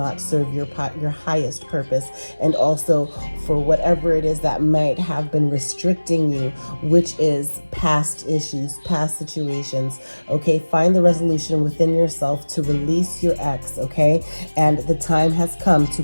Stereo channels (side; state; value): both; inverted; correlation -1.00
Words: serve your highest purpose, and also for whatever it is that might have been restricting you, which is past issues, past situations. Okay, find the resolution within yourself to release your ex. Okay, and the time has come to